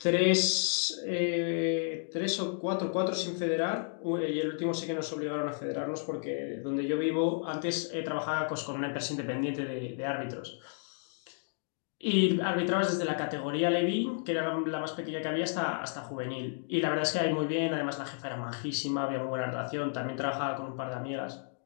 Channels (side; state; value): right; silent; digital silence